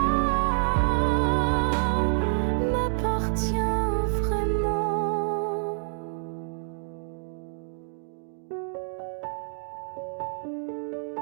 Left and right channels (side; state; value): left; silent; digital silence